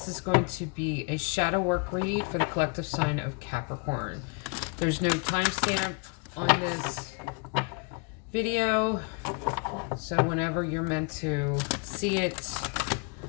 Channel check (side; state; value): right; quieter; 35.0 dB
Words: is going to be a shadow work read for the collective sign of Capricorn. There's no timestamp on this video, so whenever you're meant to see it